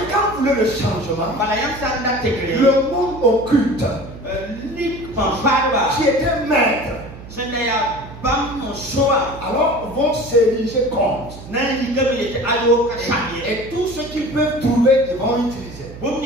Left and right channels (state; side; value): noise; right; hum, 15 dB below the sound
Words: quand vous voulez le changement, le monde occulte qui était maître, alors vont s'ériger contre. Et tout ce qu'ils peuvent trouver, ils vont utiliser.